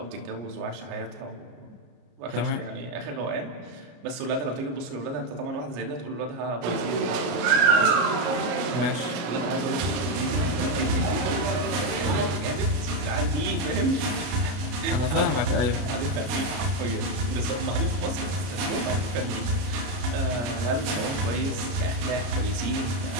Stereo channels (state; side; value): late; left; 33 ms